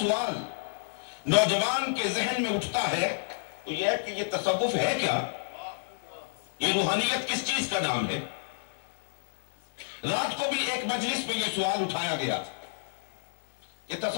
نوجوان کے ذہن میں اٹھتا ہے وہ یہ ہے کہ یہ تصوف ہے کیا؟ یہ روحانیت کس چیز کا نام ہے؟ رات کو بھی ایک مجلس میں یہ سوال اٹھایا گیا کہ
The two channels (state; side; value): silent; right; digital silence